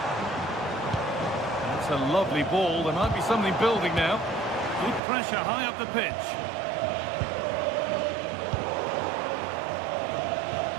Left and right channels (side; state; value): left; drops out; at 5.0 s